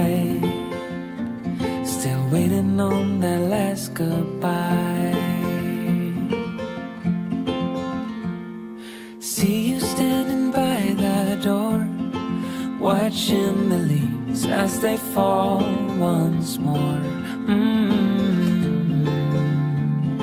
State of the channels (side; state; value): both; identical; correlation 1.00